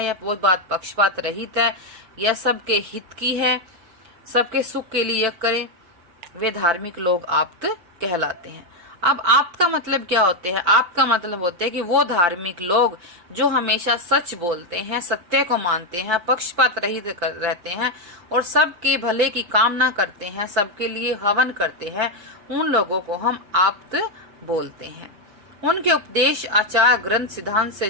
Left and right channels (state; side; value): late; left; 5.8 ms